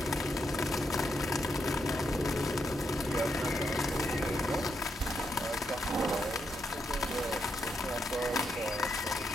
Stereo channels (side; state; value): both; normal; correlation 0.81